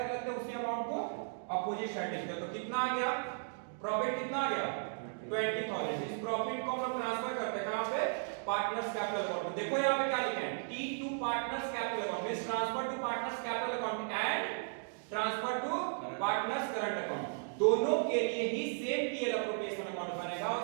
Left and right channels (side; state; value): left; silent; digital silence